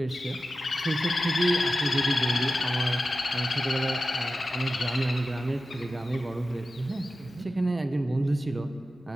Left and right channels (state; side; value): normal; both; correlation 0.93